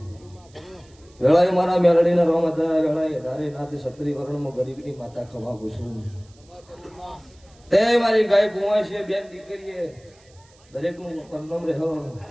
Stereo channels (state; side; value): noise; right; hiss, 30 dB below the sound